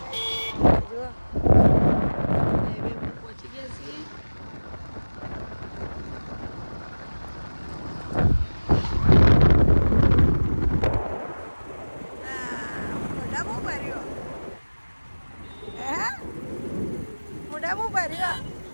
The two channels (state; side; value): inverted; both; correlation -1.00